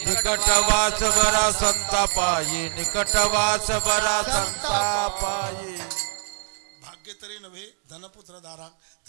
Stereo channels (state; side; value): silent; left; digital silence